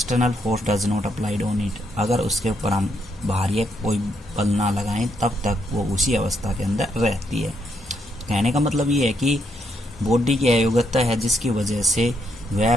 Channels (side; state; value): both; normal; correlation 0.77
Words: force does not applied on it. अगर उसके ऊपर हम बाहरी कोई बल ना लगाएं तब तक वो उसी अवस्था के अंदर रहती है। कहने का मतलब ये है कि बॉडी की अयोग्यता है जिसकी वजह से वह